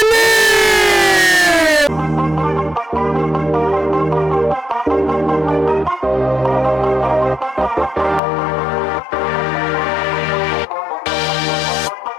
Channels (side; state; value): right; drops out; at 8.2 s